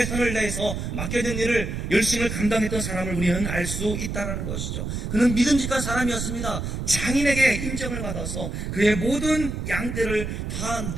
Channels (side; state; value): right; noise; rumble, 4 dB below the sound